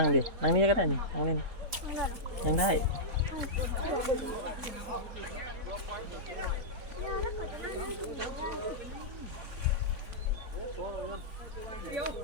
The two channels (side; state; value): left; late; 3.9 ms